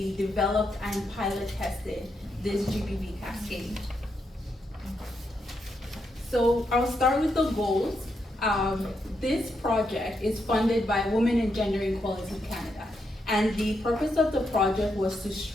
developed and pilot tested this GBV cascade. So I'll start with the goals. This project is funded by Women and Gender Equality Canada, and the purpose of the project was to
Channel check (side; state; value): both; normal; correlation 0.81